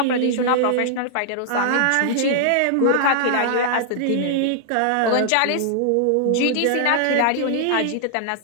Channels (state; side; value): different; both; correlation -0.01